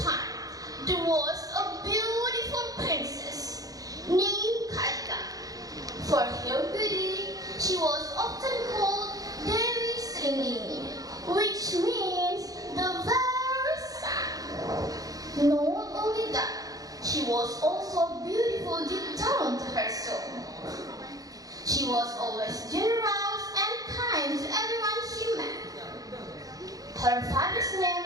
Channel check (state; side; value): late; left; 0.17 ms